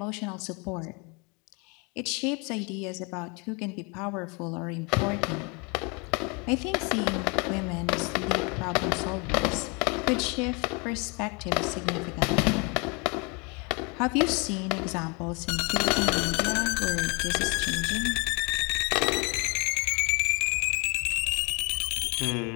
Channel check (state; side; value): quieter; right; 31.0 dB